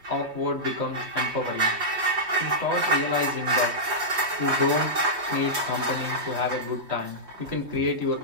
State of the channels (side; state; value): left; late; 3.2 ms